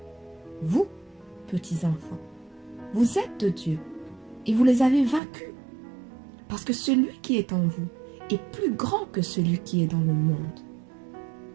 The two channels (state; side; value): drops out; left; at 5.2 s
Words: Vous, petits enfants, vous êtes de Dieu et vous les avez vaincus, parce que celui qui est en vous est plus grand que celui qui est dans le monde.